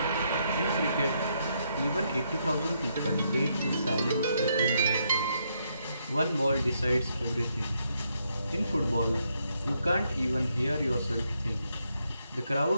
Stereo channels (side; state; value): both; inverted; correlation -0.77